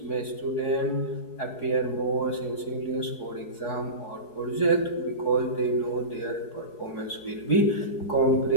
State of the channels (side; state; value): right; late; 4.7 ms